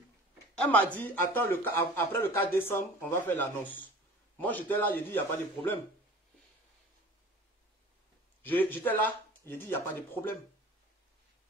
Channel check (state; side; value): normal; both; correlation 0.43